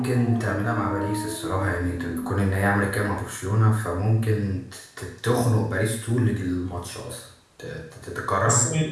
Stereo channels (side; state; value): both; identical; correlation 1.00